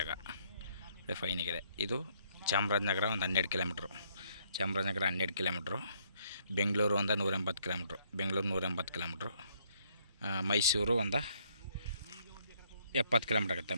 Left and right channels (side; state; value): both; inverted; correlation -0.68